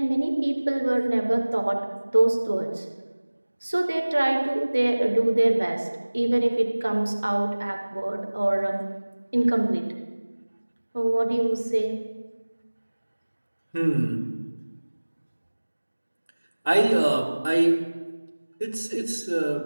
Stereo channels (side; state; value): both; inverted; correlation -1.00